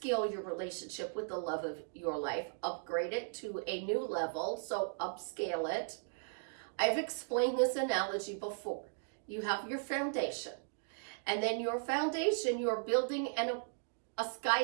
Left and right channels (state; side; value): silent; left; digital silence